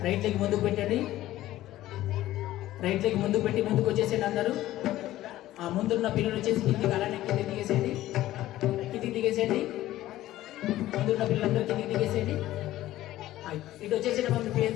రైట్ లెగ్ ముందుకు పెట్టండి. రైట్ లెగ్ ముందుకు పెట్టి ముందుకు వచ్చేసేయండి అందరూ. ఆ ముందున్న పిల్లలు వచ్చేసి కిందికి అలానే కిందికి దిగేసేయండి. కిందికి దిగేసేయండి. ముందున్న పిల్లలందరూ కిందికి దిగేసేయండి. ఇటు వచ్చేసేయండి.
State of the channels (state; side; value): quieter; right; 14.9 dB